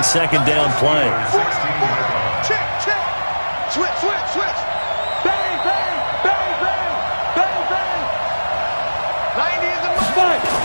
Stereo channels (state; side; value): inverted; both; correlation -1.00